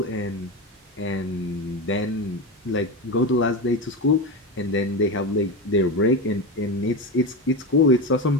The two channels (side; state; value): both; normal; correlation 0.18